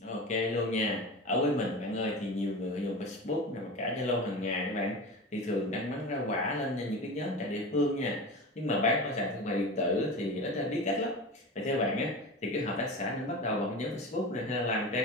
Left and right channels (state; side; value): normal; both; correlation 0.29